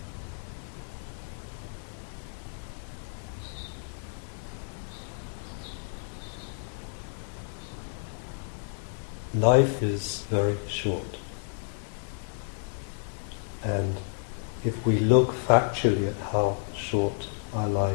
Life is very short. And if we look factually at how short our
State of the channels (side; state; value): right; silent; 58 dB below the other